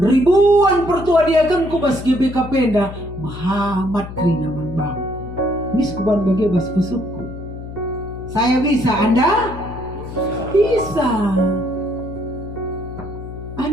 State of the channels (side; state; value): left; noise; hum, 11 dB below the sound